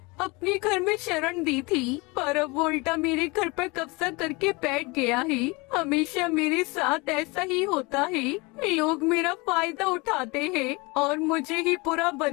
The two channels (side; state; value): right; quieter; 25.9 dB